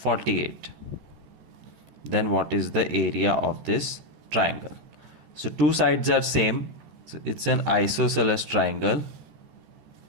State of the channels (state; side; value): late; left; 14 ms